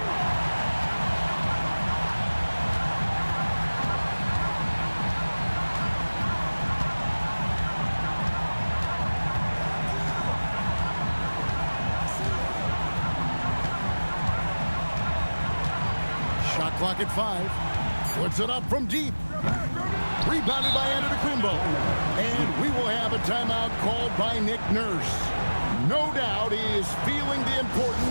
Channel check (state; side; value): inverted; both; correlation -1.00